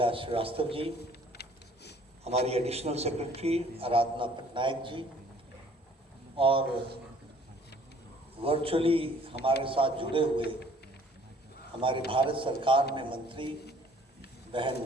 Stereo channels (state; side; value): normal; both; correlation 0.56